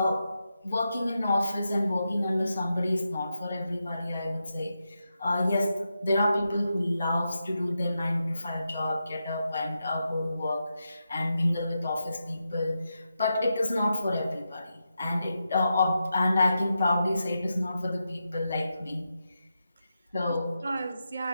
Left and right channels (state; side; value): inverted; both; correlation -0.87